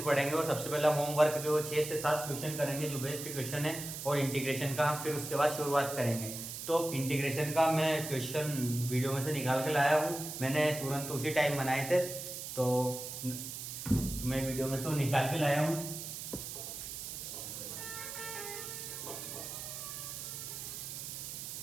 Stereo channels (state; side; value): noise; right; hiss, 7 dB below the sound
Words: पढ़ेंगे। और सबसे पहले होमवर्क के वो 6 से 7 क्वेश्चन करेंगे जो बेस्ट क्वेश्चन है, और इंटीग्रेशन का हम फिर उसके बाद शुरुआत करेंगे। तो इंटीग्रेशन का मैं क्वेश्चन वीडियो में से निकाल के लाया हूँ, मैंने तुरंत उसी टाइम बनाए थे, तो मैं वीडियो में से वो निकाल के लाया हूँ।